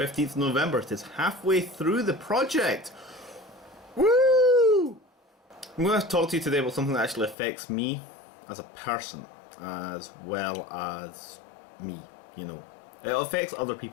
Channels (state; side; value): drops out; right; at 7.4 s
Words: November. It is halfway through the project. Woo! I'm going to talk to you today about something that actually affects me as a person, as well as me, you know. It affects other